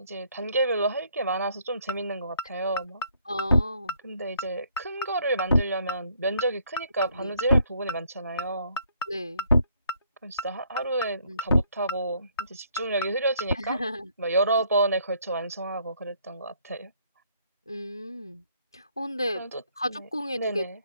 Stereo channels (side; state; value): both; inverted; correlation -0.66